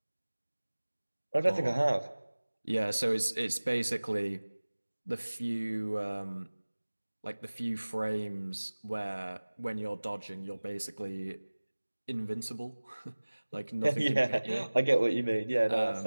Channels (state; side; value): inverted; both; correlation -1.00